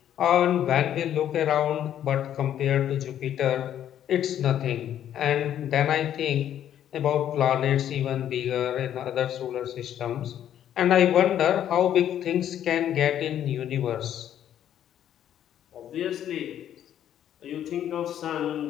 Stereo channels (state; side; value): quieter; right; 10.6 dB